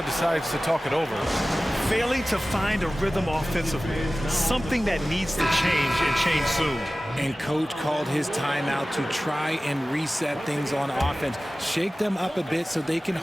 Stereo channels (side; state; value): both; normal; correlation 0.97